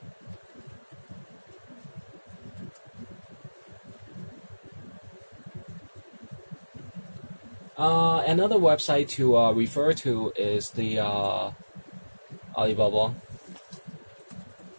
Another website to refer to is the Alibaba.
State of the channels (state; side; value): inverted; both; correlation -1.00